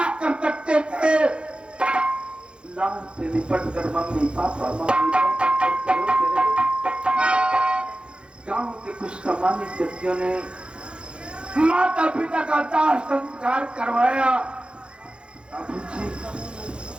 कर सकते थे, लान से निपट कर मम्मी पापा गांव के कुछ सम्मानित व्यक्तियों ने माता पिता का दाह संस्कार करवाया। बाबूजी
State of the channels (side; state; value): left; late; 0.055 ms